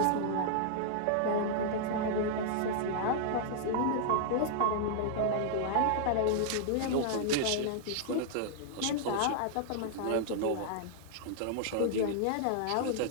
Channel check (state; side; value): different; both; correlation -0.01